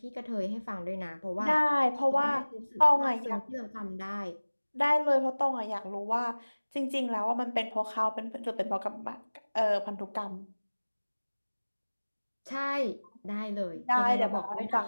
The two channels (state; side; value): inverted; both; correlation -1.00